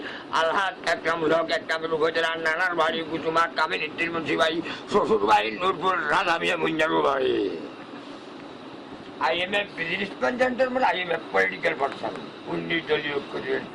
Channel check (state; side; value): identical; both; correlation 1.00